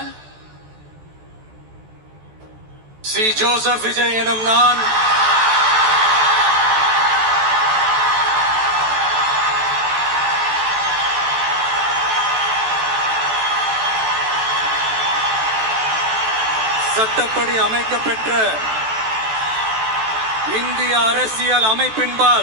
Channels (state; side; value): late; left; 14 ms